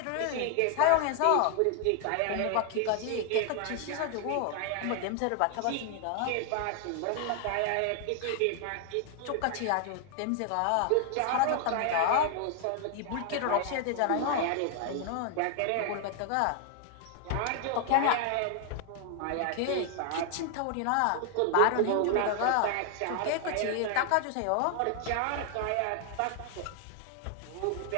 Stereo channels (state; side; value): different; both; correlation 0.00